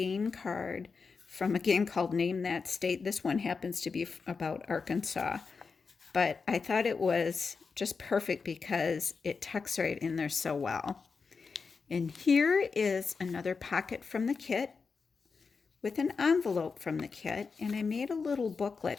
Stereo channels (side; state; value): right; quieter; 5.0 dB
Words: card from a game called Name That State. This one happens to be about Arkansas. but I thought it was just perfect because it tucks right in there so well. And here is another pocket from the kit with an envelope from the kit, and I made a little